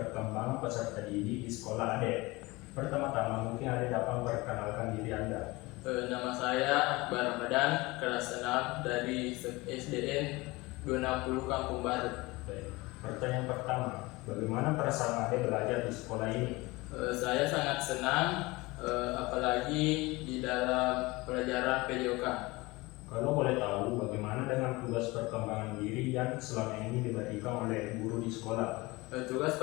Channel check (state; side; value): quieter; right; 22.4 dB